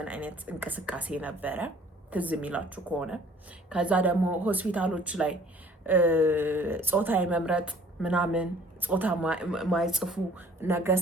አይነት እንቅስቃሴ ነበረ፣ ትዝ የሚላችሁ ከሆነ። ከዛ ደግሞ ሆስፒታሎች ላይ ጾታ የመምረጥ ምናምን ጾታ ማይጽፉ ነገር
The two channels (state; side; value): normal; both; correlation 0.53